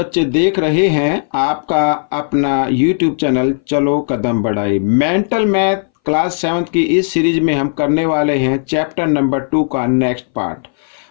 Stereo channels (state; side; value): silent; right; 63 dB below the other